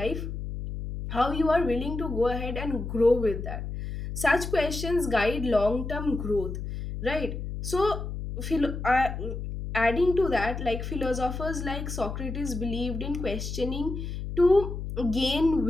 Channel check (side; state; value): left; noise; hum, 6 dB below the sound